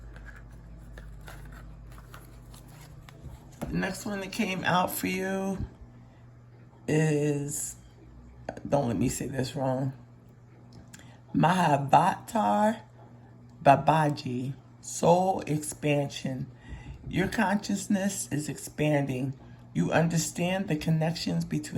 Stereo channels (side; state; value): both; identical; correlation 1.00